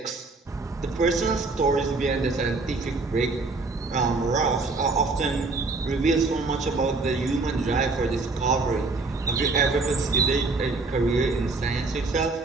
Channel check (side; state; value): left; quieter; 3.6 dB